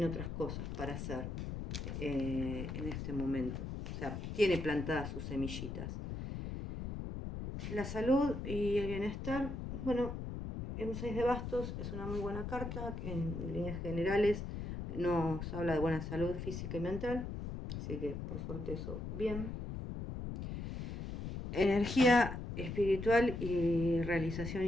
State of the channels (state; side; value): noise; left; rumble, 6 dB below the sound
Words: otras cosas para hacer en este momento. O sea, tiene plantadas sus semillitas. La salud y el bienestar, bueno, en un 6 de bastos es una muy buena carta, en líneas generales nos habla de buena salud física y mental, así que por suerte eso bien. Energía espiritual y realización